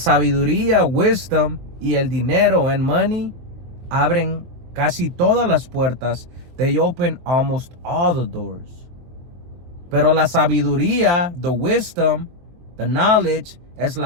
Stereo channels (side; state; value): left; late; 23 ms